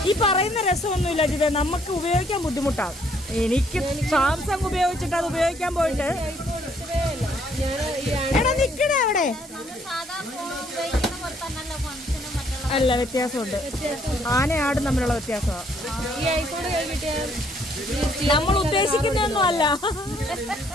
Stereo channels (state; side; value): normal; both; correlation 0.66